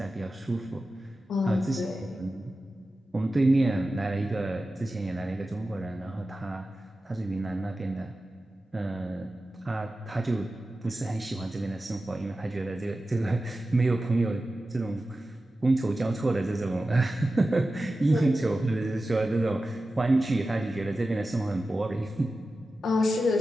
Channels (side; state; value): both; normal; correlation 0.94